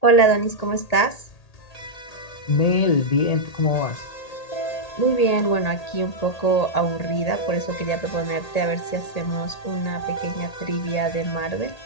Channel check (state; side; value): late; right; 1.8 ms